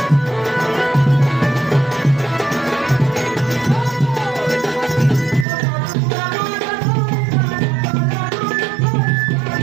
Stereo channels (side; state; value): left; drops out; at 5.5 s